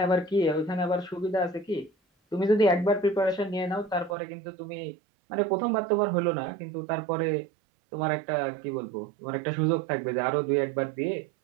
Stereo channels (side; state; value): left; drops out; at 4.2 s